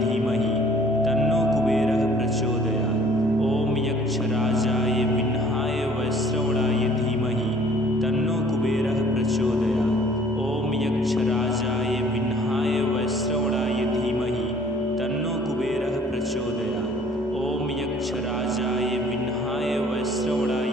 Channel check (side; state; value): both; normal; correlation 0.55